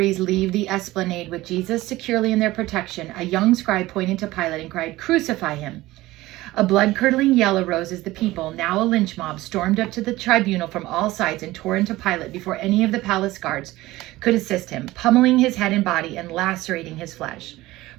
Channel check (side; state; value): left; quieter; 17.9 dB